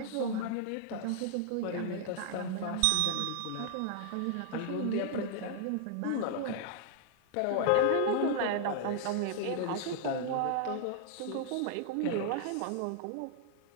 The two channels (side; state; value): both; different; correlation -0.01